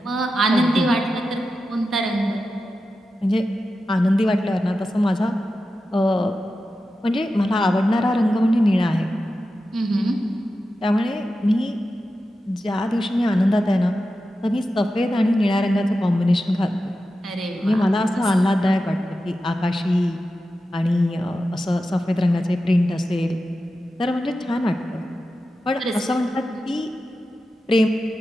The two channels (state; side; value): normal; both; correlation 0.92